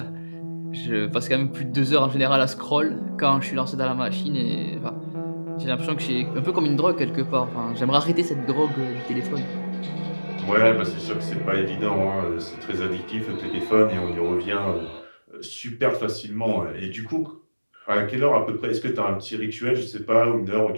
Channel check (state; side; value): inverted; both; correlation -1.00